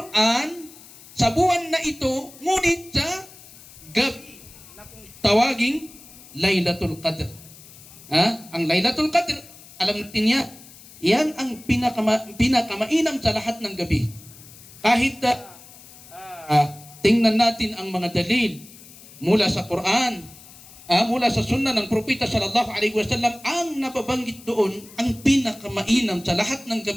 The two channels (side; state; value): left; noise; hiss, 20 dB below the sound